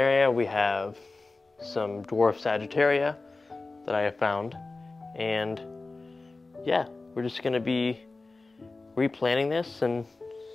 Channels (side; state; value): right; quieter; 3.5 dB